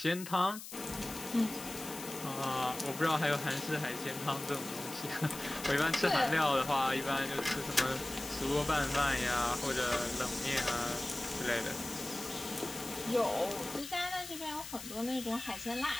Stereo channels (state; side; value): noise; left; hiss, 11 dB below the sound